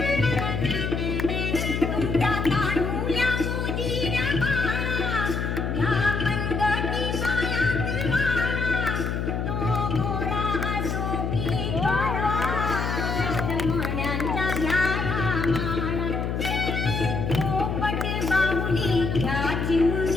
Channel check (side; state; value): left; noise; hum, 1 dB below the sound